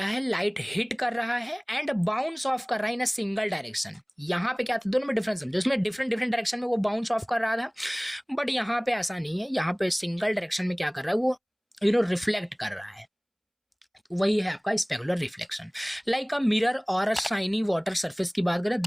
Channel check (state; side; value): identical; both; correlation 1.00